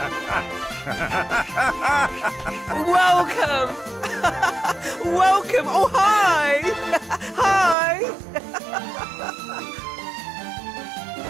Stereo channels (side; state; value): left; drops out; at 7.8 s